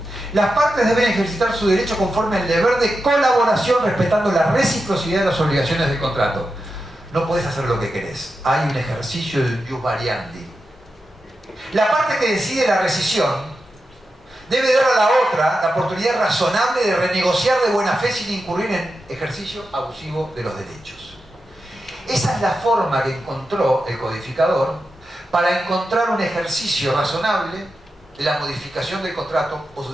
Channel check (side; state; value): both; normal; correlation 0.89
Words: Las partes deben ejercitar su derecho conforme al deber de colaboración, respetando la reciprocidad de las obligaciones del contrato. No puedes hacer lo que querés. Hay un ejercicio de jus variandi. La parte que decide la rescisión debe dar a la otra la oportunidad razonable de renegociar de buena fe sin incurrir en ejercicio abusivo de los derechos. Esa es la forma que encontró el codificador para encontrar un ejercicio razonable de la modificación del contrato o